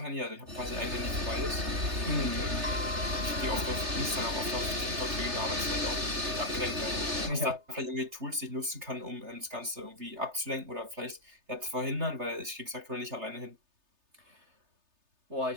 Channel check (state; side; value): late; left; 3.3 ms